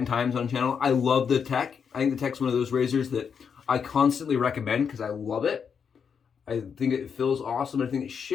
times on channel. I love the tech. I think the tech's one of those razors that I constantly recommend because I love it. I think it feels awesome. I think it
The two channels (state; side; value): quieter; right; 6.7 dB